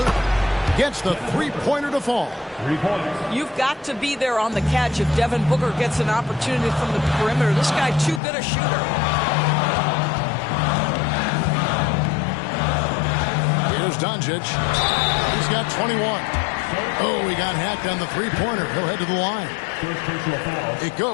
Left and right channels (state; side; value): drops out; right; at 8.2 s